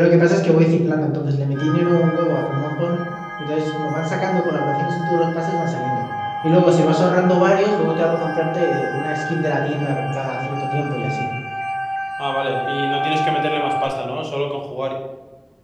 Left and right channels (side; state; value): both; identical; correlation 1.00